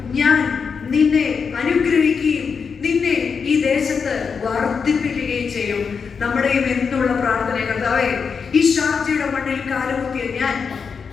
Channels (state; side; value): quieter; right; 5.8 dB